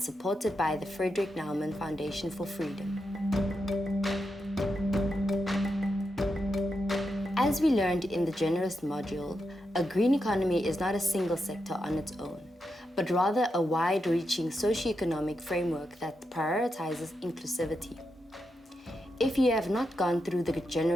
by the Frederick Naumann Foundation for Freedom. As we learned in the generalist module, a green economy is not a single sector on its own, but rather a wide-reaching socio-economic framework that prioritizes inclusivity. If you have not gone through the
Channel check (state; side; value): normal; both; correlation 0.86